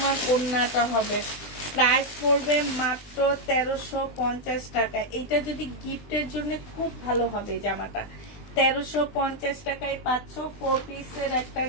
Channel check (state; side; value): late; right; 20 ms